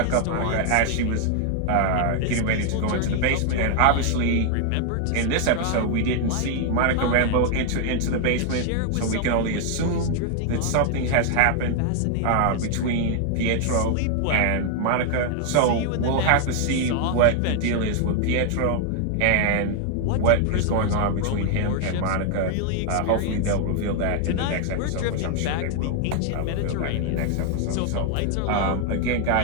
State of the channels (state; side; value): different; both; correlation 0.00